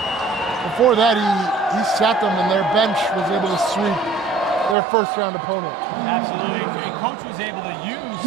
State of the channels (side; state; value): left; drops out; at 4.8 s